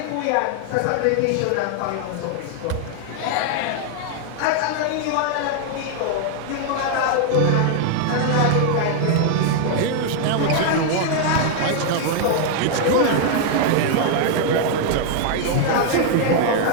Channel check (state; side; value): different; both; correlation 0.00